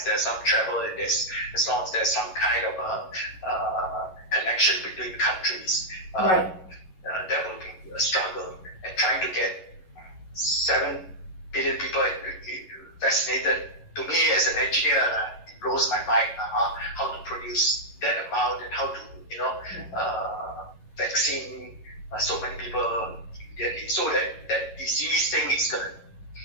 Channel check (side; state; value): right; late; 11 ms